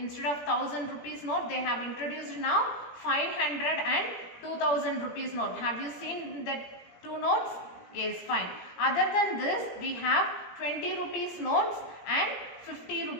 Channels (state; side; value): late; right; 17 ms